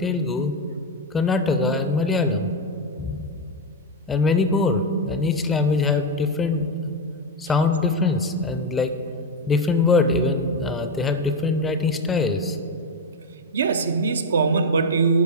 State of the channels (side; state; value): both; normal; correlation 0.07